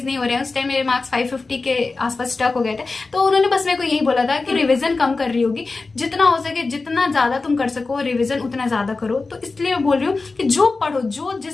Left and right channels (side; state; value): right; quieter; 3.8 dB